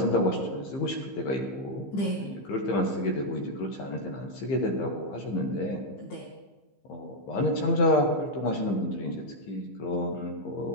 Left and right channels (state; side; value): late; right; 15 ms